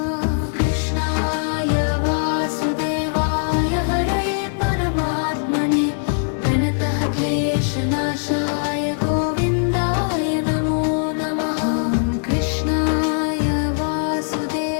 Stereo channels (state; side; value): silent; right; 61 dB below the other